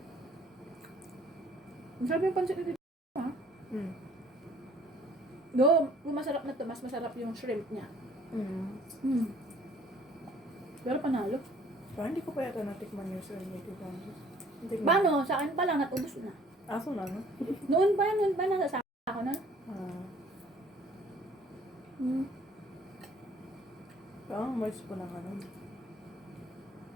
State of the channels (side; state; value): both; normal; correlation 0.56